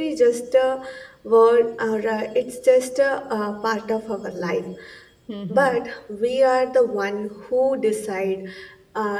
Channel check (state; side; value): identical; both; correlation 1.00